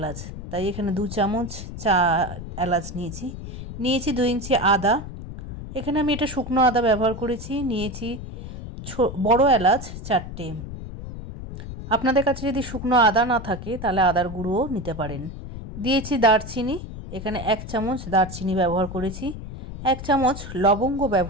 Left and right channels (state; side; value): noise; left; rumble, 10 dB below the sound